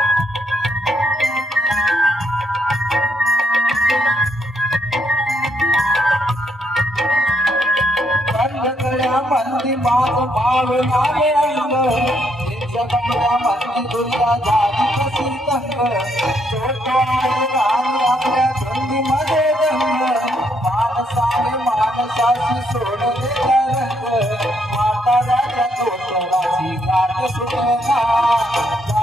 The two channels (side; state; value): both; normal; correlation 0.74